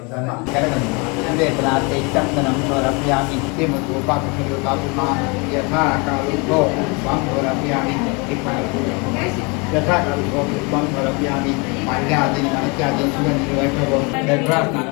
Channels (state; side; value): quieter; right; 30.0 dB